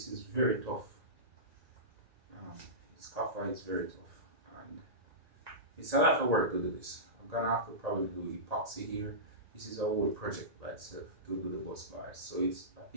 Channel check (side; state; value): left; late; 1.8 ms